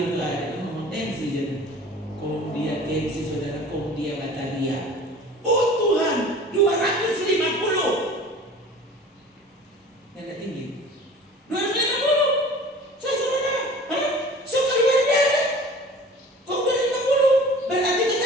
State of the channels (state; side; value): normal; both; correlation 0.44